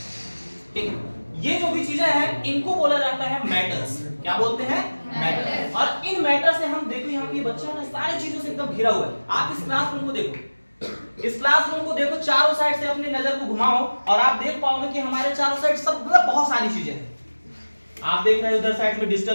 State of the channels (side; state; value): both; inverted; correlation -1.00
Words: ठीक है। ये जो भी चीजें हैं इनको बोला जाता है मैटर्स, क्या बोलते हैं, मैटर। और इन मैटर से हम देखो यहाँ पे बच्चा ना सारी चीजों से एकदम घिरा हुआ है। आप इस क्लासरूम को देखो, इस क्लासरूम को देखो, चारों साइड से अपनी नजर को घुमाओ और आप देख पाओगे कि हमारे चारों साइड सब मतलब बहुत सारी चीजें हैं। आप देख रहे हैं उधर साइड में